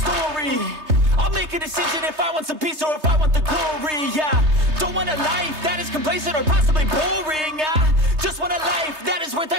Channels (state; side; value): late; left; 3.3 ms